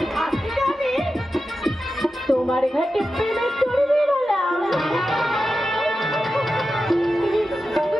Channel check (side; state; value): both; normal; correlation 0.91